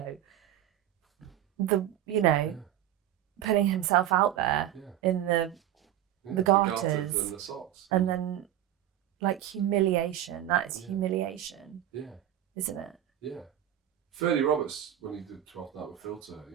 putting himself out there in the garters and the socks, and then like humiliation. That is humiliation. Yeah, isn't it? Yeah. Ferdy Roberts, when he did 12th Night with Filter,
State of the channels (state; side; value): quieter; left; 12.1 dB